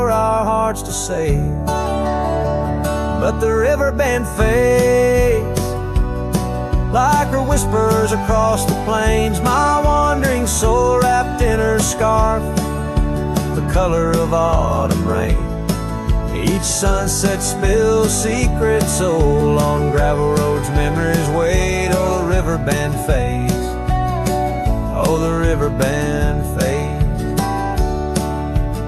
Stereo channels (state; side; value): identical; both; correlation 1.00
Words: our hearts to save. But the river band fades like her whispers across the plains. My wandering soul wrapped in her scarf, the color of autumn rain. Each sunset spills secret soul on gravel roads, memories wait. Oh, the river band fades. Oh, the river band fades.